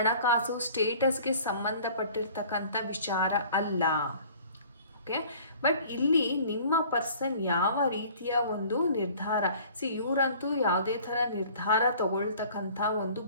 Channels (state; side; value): inverted; both; correlation -0.50